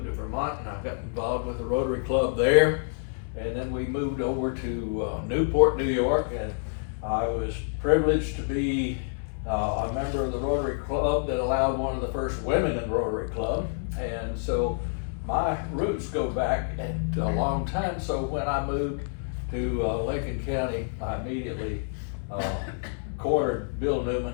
to Vermont and I got involved with the Rotary Club there. And then we moved over to Newport, New York, and I was privileged to be a member of the Rotary Club that allowed one of the first women in the Rotary Club. And so my roots go back a long time. So when I moved to Lincoln County, I immediately cornered Bill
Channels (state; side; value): silent; right; digital silence